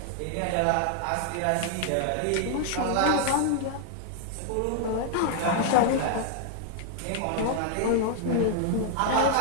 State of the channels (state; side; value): different; both; correlation 0.00